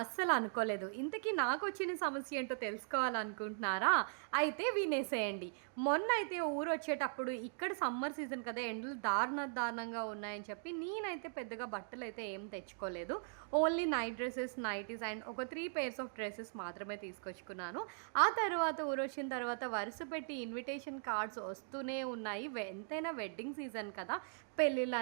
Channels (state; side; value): silent; left; digital silence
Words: అనుకోలేదు. ఇంతకీ నాకొచ్చిన సమస్య ఏంటో తెలుసుకోవాలనుకుంటున్నారా? అయితే వినేసేయండి. మొన్నైతే ఊరొచ్చేటప్పుడు ఇక్కడ సమ్మర్ సీజన్ కదా! ఎండలు దారుణంగా ఉన్నాయని చెప్పి నేనైతే పెద్దగా బట్టలైతే ఏం తెచ్చుకోలేదు. Only night dresses, nighties and ఒక 3 పెయిర్స్ ఆఫ్ డ్రెసెస్ మాత్రమే తీసుకొచ్చుకున్నాను. ఆ తర్వాత ఊరొచ్చిన తర్వాత వరుస పెట్టి ఇన్విటేషన్ కార్డ్స్ వస్తూనే ఉన్నాయి. ఎంతైనా వెడ్డింగ్ సీజన్ కదా!